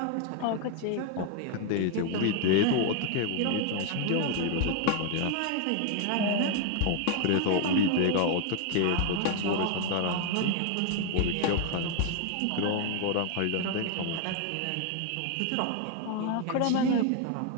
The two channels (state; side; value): different; both; correlation 0.01